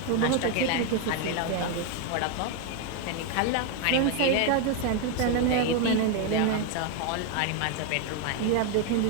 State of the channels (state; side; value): different; both; correlation 0.01